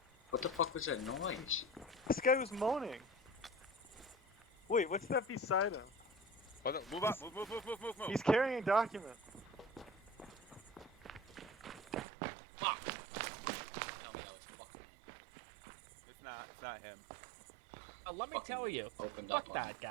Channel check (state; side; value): drops out; left; at 12.1 s